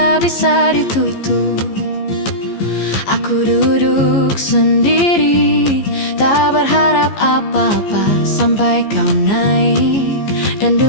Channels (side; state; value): right; late; 15 ms